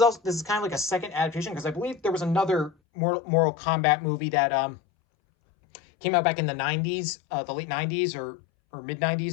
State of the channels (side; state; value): right; drops out; at 2.7 s